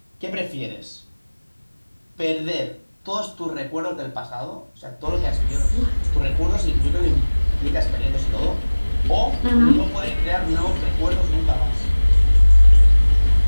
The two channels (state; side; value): inverted; both; correlation -1.00